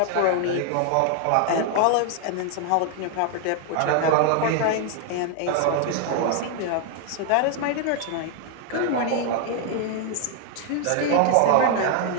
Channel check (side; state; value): both; different; correlation 0.00